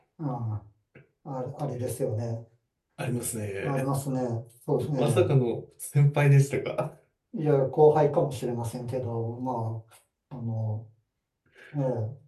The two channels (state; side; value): identical; both; correlation 1.00